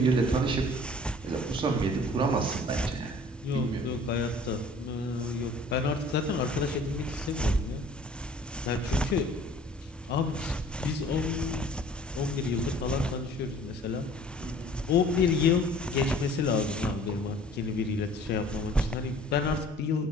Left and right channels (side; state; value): both; normal; correlation 0.50